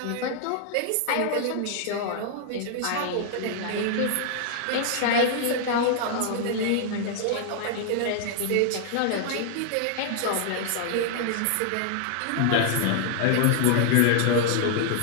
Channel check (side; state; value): both; different; correlation 0.00